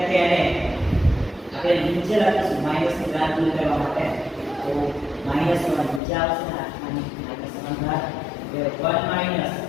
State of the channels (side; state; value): right; drops out; at 6.0 s